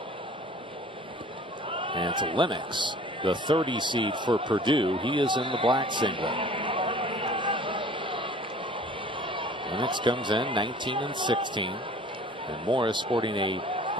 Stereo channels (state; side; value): normal; both; correlation 0.48